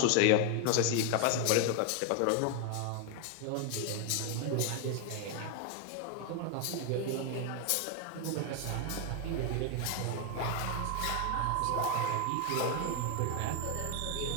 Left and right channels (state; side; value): different; both; correlation 0.01